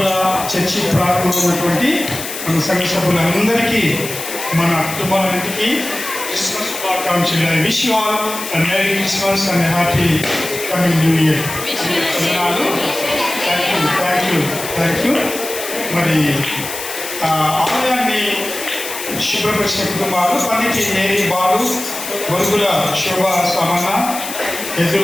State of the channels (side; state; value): left; noise; hiss, 8 dB below the sound